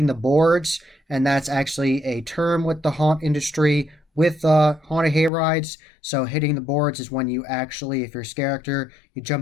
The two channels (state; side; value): drops out; right; at 5.3 s